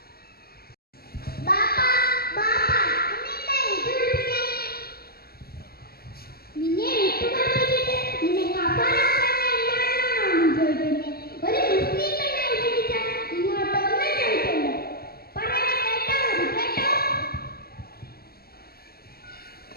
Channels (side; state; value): right; late; 0.45 ms